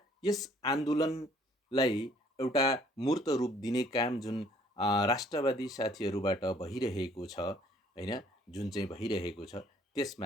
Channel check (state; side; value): normal; both; correlation 0.60